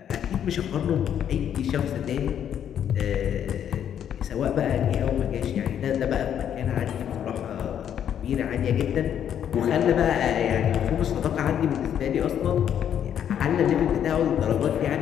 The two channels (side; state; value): right; quieter; 9.4 dB